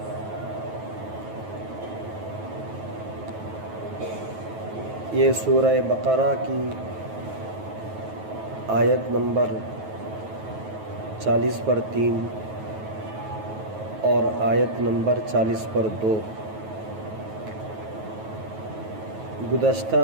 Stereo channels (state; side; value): late; left; 9.3 ms